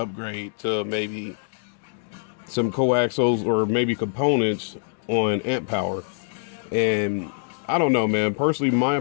to maybe some coaxials or maybe components on amp power. And I don't know, man. Personally, my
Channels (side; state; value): right; silent; digital silence